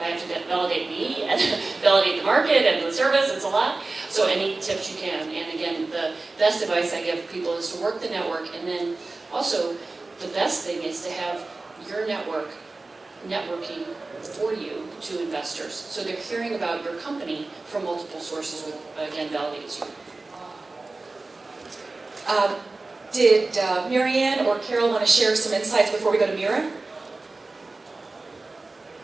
I have to validate me and validate the market and the service, it's a lot. So any tips you can. And again, the best advice I give people is to work the network, and then also the best thing is to have your networking for you to investors. So they're hearing about your company from multiple sources, which again validates you. Did Marianne or Carol want to share some insights before we go to Mira?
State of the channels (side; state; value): left; quieter; 3.4 dB